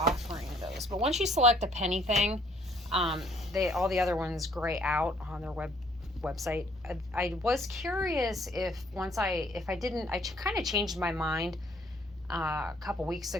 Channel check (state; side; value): normal; both; correlation 0.63